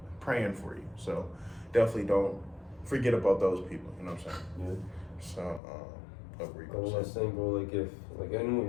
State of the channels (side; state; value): right; drops out; at 5.6 s